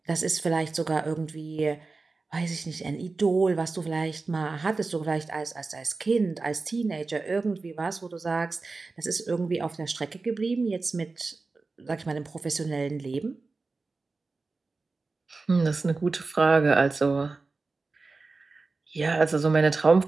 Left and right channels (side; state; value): left; quieter; 3.8 dB